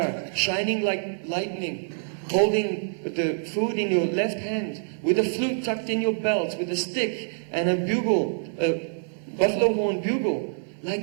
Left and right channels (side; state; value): left; silent; 55 dB below the other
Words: shining like lightning, holding the food in your left hand, with a flute tucked in your belt, with a stick and a bugle, a buffalo horn bugle,